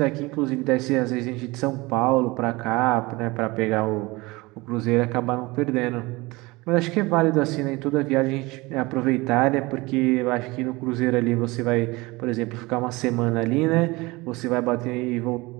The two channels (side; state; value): left; quieter; 22.7 dB